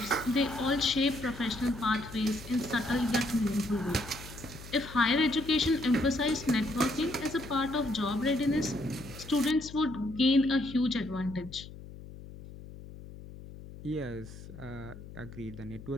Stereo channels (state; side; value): noise; left; hum, 15 dB below the sound